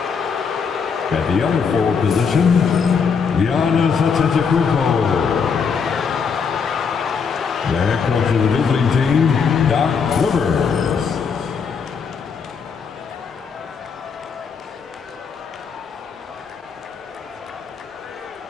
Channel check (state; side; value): quieter; right; 6.0 dB